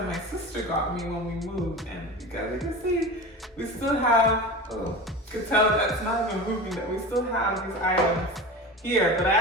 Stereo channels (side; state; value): both; normal; correlation 0.31